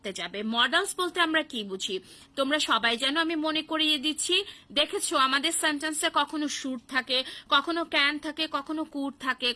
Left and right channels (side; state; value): both; identical; correlation 1.00